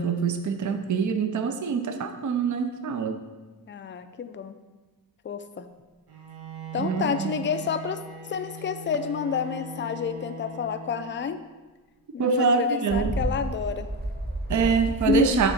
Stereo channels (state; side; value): normal; both; correlation 0.15